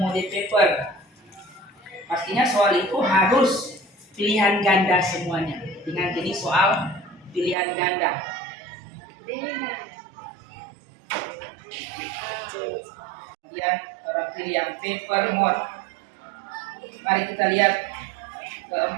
mode paper. Pastinya soal itu harus pilihan ganda semuanya. Dengan jenis soal pilihan ganda. Kemudian orang pilih yang paper mode. Mari kita lihat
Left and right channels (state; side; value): drops out; left; at 7.6 s